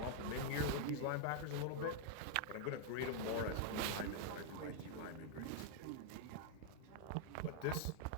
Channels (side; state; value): both; different; correlation 0.00